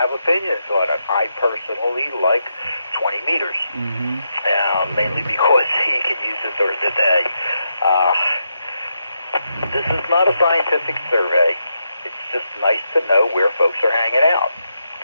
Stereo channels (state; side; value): inverted; both; correlation -0.83